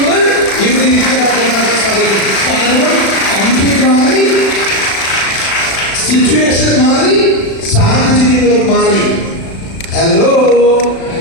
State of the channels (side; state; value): right; late; 36 ms